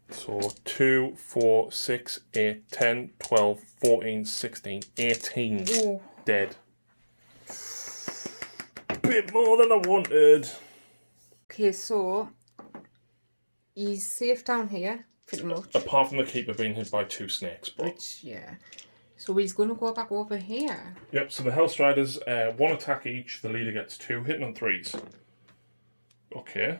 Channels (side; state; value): both; inverted; correlation -1.00